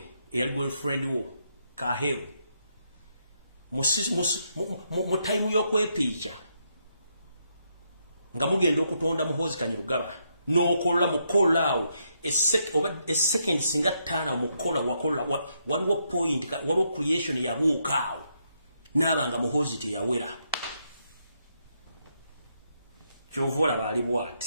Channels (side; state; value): both; inverted; correlation -0.78